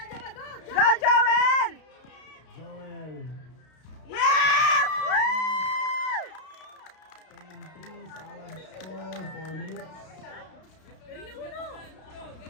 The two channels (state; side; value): late; right; 32 ms